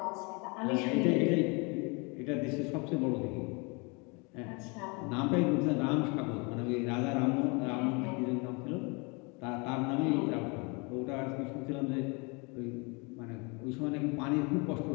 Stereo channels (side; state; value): right; quieter; 30.5 dB